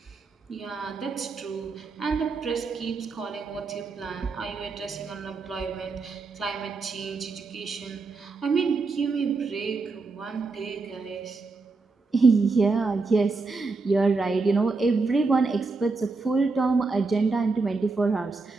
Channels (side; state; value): left; quieter; 4.0 dB